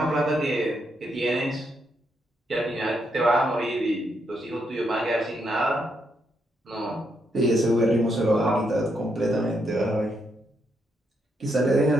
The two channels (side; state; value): both; normal; correlation 0.78